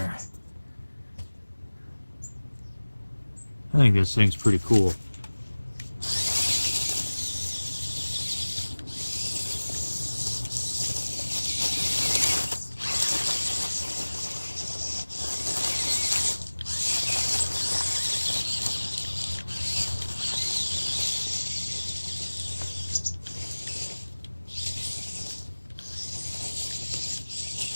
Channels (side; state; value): both; inverted; correlation -1.00